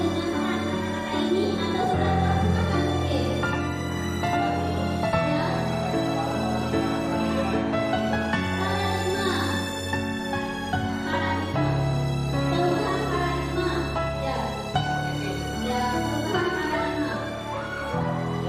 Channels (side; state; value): both; identical; correlation 1.00